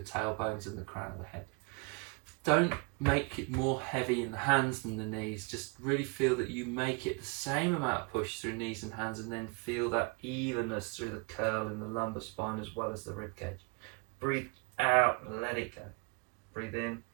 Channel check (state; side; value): quieter; left; 31.2 dB